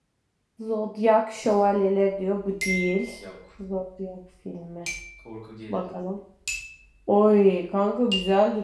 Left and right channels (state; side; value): identical; both; correlation 1.00